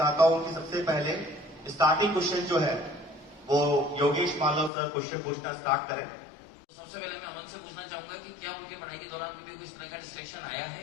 हूं कि सबसे पहले स्टार्टिंग क्वेश्चन जो है वो योगेश मालव सर क्वेश्चन पूछना स्टार्ट करें। सबसे पहले मैं अमन से पूछना चाहूंगा कि क्या उनकी पढ़ाई के दौरान मुझे कोई तरह का डिस्ट्रैक्शन आया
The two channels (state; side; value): drops out; right; at 4.7 s